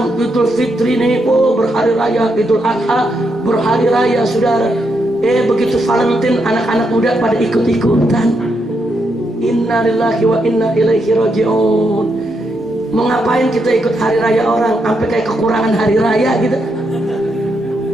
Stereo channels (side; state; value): both; normal; correlation 0.81